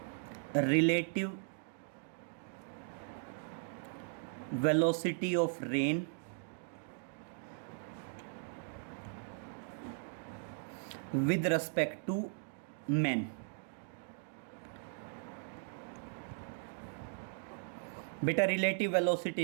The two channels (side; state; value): left; silent; digital silence